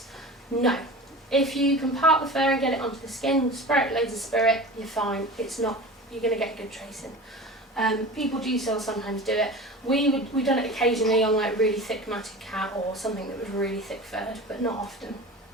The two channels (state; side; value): normal; both; correlation 0.34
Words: No. If you can part the fur and get it onto the skin, spray it loads of spirit, you're fine. It's not, you're going to get good tracing. People do still sometimes do it. We've done it occasionally on like really thick matted cat or something that was really thick furred, but not often.